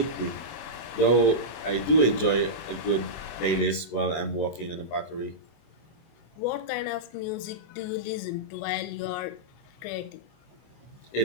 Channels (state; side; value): late; right; 24 ms